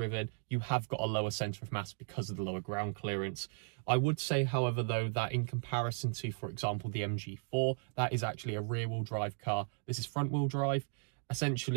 You have got a lower centre of mass because of the lower ground clearance. I would say, however, though, that in comparison to, for example, the MG4, that is actually a rear-wheel drive car. This is front-wheel drive.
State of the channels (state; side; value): silent; left; 54 dB below the other